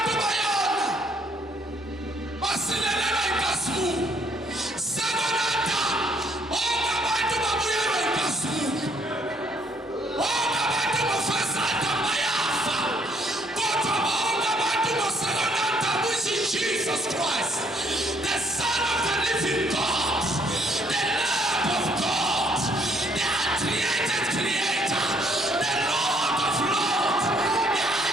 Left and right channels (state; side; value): normal; both; correlation 0.67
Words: bayona. Basilelelwa inkasimuko. Second Adam bonga abantu babuyelwa inkasimuko. Bonga abantu bo-first Adam bayafa. Kodwa bonga abantu bo-second Adam which is Jesus Christ, the Son of the living God, the Lamb of God, the uncreated Creator, the Lord of Lords, the